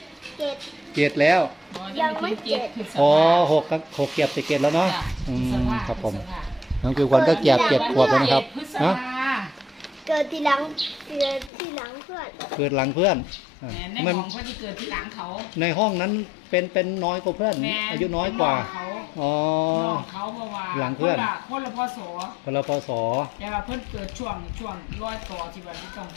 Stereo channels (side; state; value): right; drops out; at 11.5 s